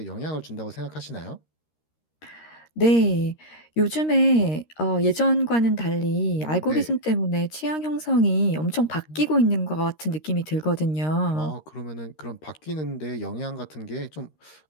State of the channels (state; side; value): late; right; 13 ms